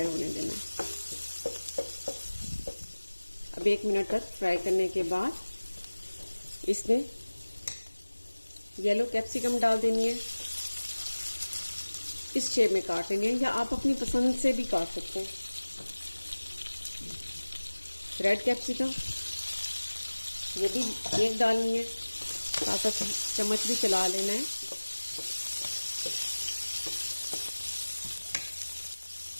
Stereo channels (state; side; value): inverted; both; correlation -1.00